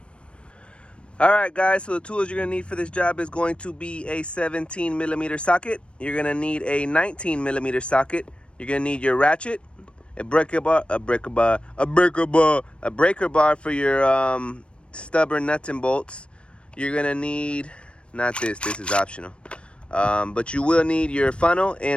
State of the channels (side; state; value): right; late; 0.058 ms